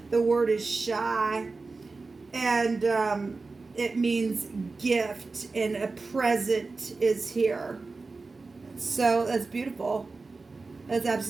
The word is shy. And it means gift. And a present is here. So that's beautiful. That's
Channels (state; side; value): quieter; left; 3.9 dB